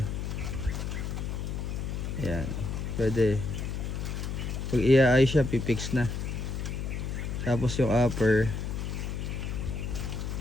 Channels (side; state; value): left; noise; hum, 3 dB below the sound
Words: Ayan. Pwede. Pag iaayos siya pipix na. Tapos yung upper.